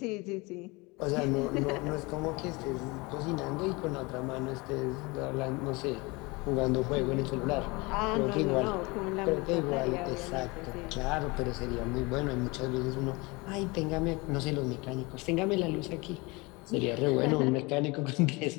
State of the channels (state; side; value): quieter; right; 25.4 dB